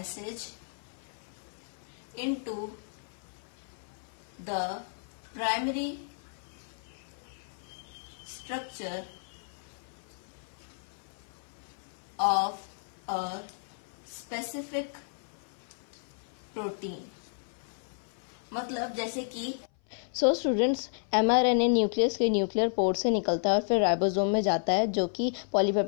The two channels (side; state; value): right; silent; 56 dB below the other